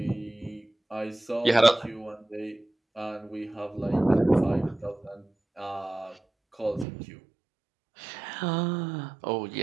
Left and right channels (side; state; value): left; drops out; at 6.9 s